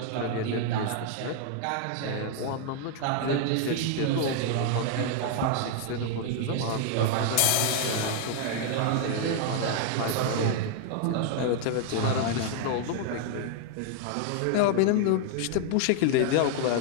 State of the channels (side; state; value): both; different; correlation 0.00